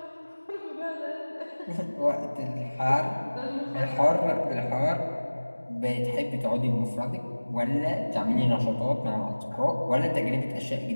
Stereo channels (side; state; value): both; inverted; correlation -1.00